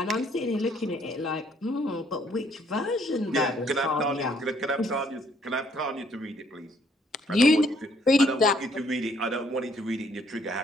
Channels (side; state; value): both; normal; correlation 0.66